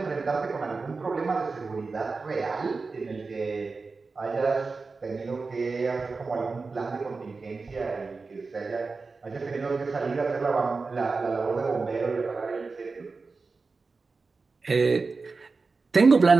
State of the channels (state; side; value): quieter; left; 4.2 dB